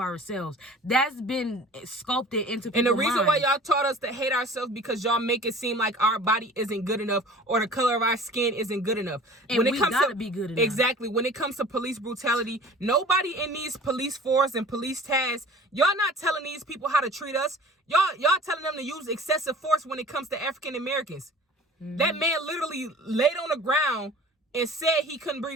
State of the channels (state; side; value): normal; both; correlation 0.45